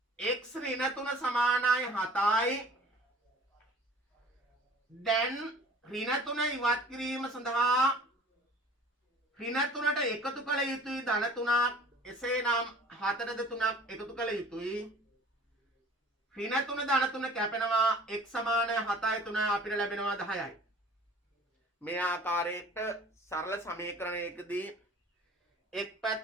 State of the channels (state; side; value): normal; both; correlation 0.48